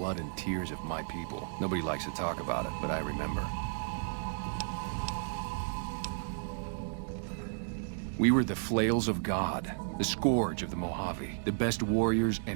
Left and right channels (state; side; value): silent; left; digital silence